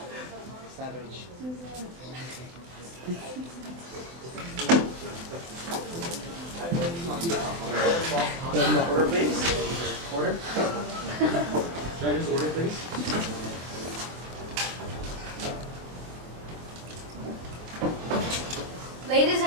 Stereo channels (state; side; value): late; left; 24 ms